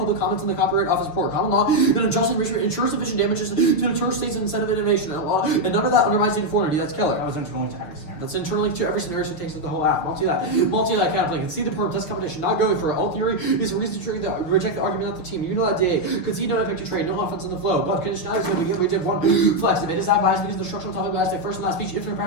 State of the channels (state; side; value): late; right; 6.5 ms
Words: comments in the Copyright Office report. Common law and unjust enrichment ensures sufficient damages to deter states and incentive innovation. And none of that undermines uniformity. That's Keller. That was internal to every scenario. That's internally to every scenario, so it takes the whole app. Multi-lat counterplay. Concede the purpose competition, not going for it. All theory is a reason to reject the argument that the team. Unilat DA. Concede no impact to trade, no offense in the flow. But conditionality is we did one flex. Debate is not biased because the structural topic bias like first and last speech, infinite